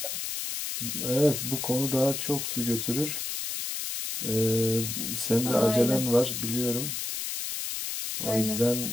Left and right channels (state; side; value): noise; left; hiss, 4 dB below the sound